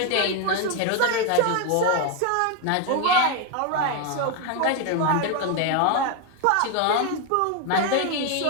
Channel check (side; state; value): both; different; correlation 0.01